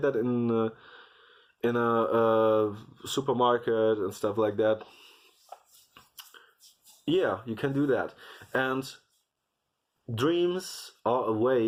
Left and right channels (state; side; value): identical; both; correlation 1.00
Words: that in a supermarket and stuff like that. Yeah, you can do that. And dreams are a